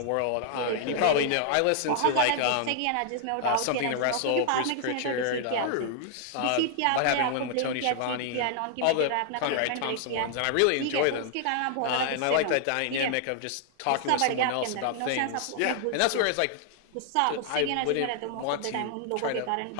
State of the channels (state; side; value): different; both; correlation 0.00